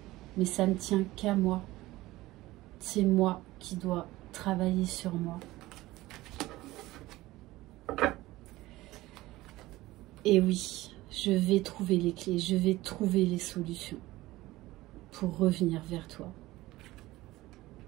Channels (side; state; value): left; quieter; 18.0 dB